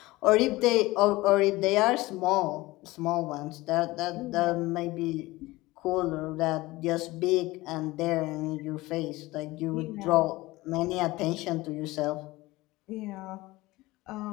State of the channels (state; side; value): quieter; right; 19.7 dB